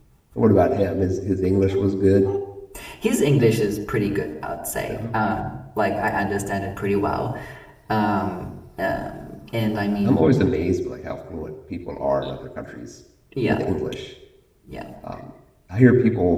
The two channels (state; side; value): identical; both; correlation 1.00